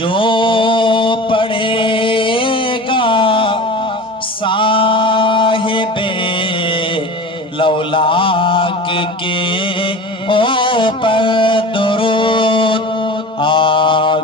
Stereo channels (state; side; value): normal; both; correlation 0.34